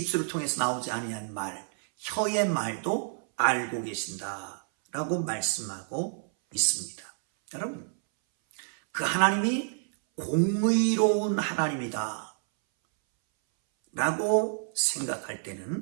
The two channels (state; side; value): silent; left; 59 dB below the other